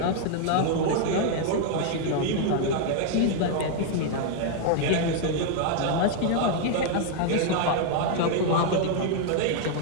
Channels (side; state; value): both; different; correlation 0.00